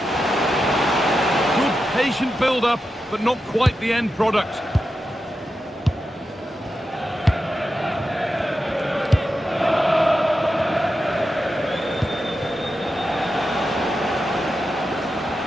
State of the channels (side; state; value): both; normal; correlation 0.89